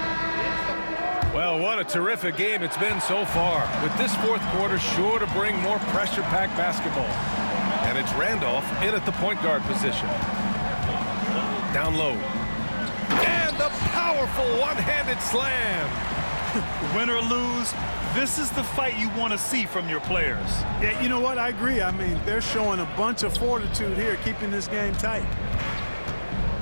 Well, what a terrific game it's been so far. With this fourth quarter sure to bring more pressure-packed basketball. And it's Randolph in at the point guard position. Down low. And the powerful one-handed slam. Win or lose, this is the fight you want to see from your players. Yeah, you know what? I agree. I mean, they're showing a bunch of fortitude here, keeping this game tight.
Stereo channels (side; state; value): both; inverted; correlation -1.00